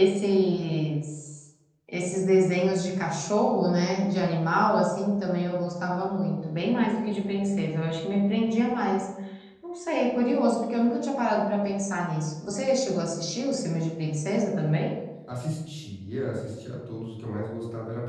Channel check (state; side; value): identical; both; correlation 1.00